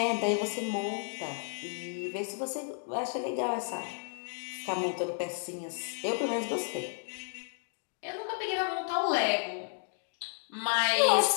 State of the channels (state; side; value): silent; right; 56 dB below the other